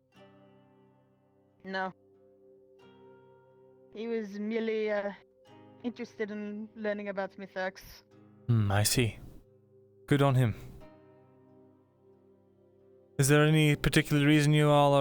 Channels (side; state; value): both; identical; correlation 1.00